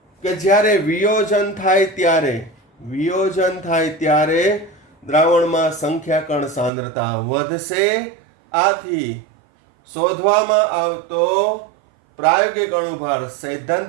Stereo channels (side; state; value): left; drops out; at 6.7 s